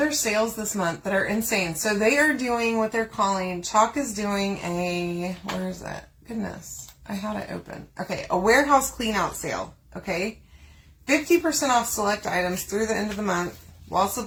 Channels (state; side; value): identical; both; correlation 1.00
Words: sales this month that are insane. So they are doing what they're calling, Chalk is doing a, where is that? Goodness, I had it open. Okay, a warehouse clean out sale, okay? 50% off select items through the end of the month while